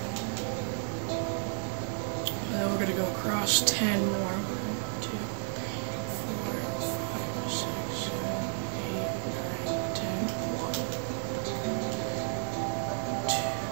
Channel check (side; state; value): left; silent; digital silence